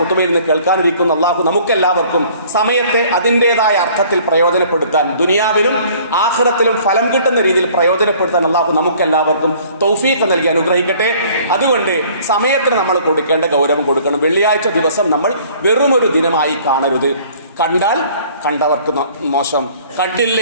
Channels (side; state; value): both; inverted; correlation -0.54